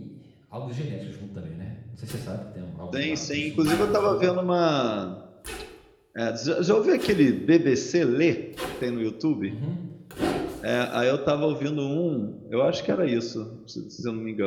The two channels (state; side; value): identical; both; correlation 1.00